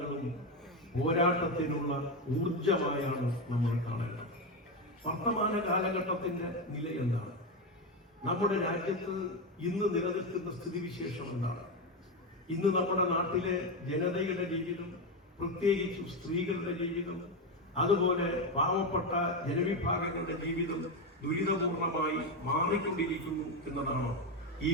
പോരാട്ടത്തിനുള്ള ഊർജമായാണ് നമ്മൾ കാണേണ്ടത്. വർത്തമാന കാലഘട്ടത്തിന്റെ നില എന്താണ്? നമ്മുടെ രാജ്യത്ത് ഇന്ന് നിലനിൽക്കുന്ന സ്ഥിതിവിശേഷം എന്താണ്? ഇന്ന് നമ്മുടെ നാട്ടിലെ ജനതയുടെ ജീവിതം, പ്രത്യേകിച്ചും സ്ത്രീകളുടെ ജീവിതം, അതുപോലെ പാവപ്പെട്ട ജനവിഭാഗങ്ങളുടെ ജീവിതം ദുരിതപൂർണമായി മാറിക്കൊണ്ടിരിക്കുന്നു എന്നതാണ് ഈ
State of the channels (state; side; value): normal; both; correlation 0.11